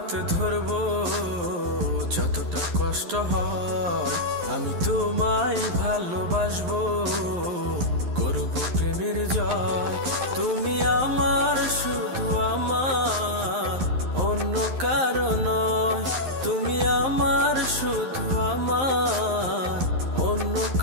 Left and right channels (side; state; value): left; late; 11 ms